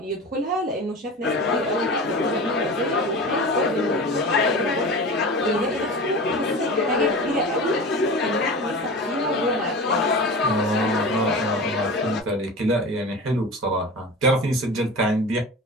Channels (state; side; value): normal; both; correlation 0.32